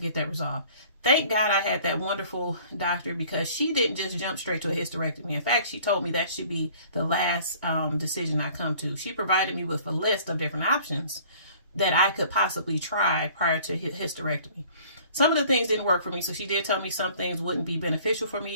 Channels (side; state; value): both; inverted; correlation -0.52